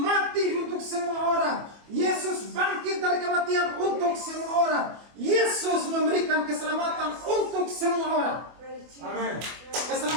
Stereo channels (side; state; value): left; late; 24 ms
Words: untuk semua orang. Yesus bangkit dari kematian untuk semua orang. Yesus memberikan keselamatan untuk semua orang. Amin.